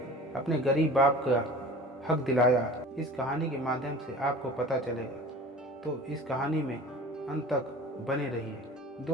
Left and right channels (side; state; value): both; normal; correlation 0.41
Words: अपने गरीब बाप का हक दिलाया, इस कहानी के माध्यम से आपको पता चलेगा। तो इस कहानी में अंत तक बने रहिए।